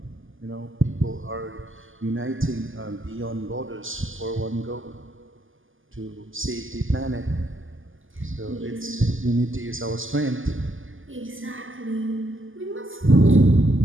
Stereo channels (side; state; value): left; late; 0.58 ms